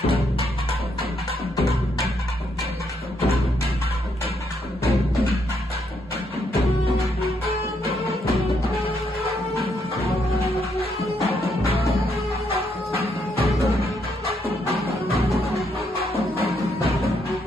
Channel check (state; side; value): normal; both; correlation 0.75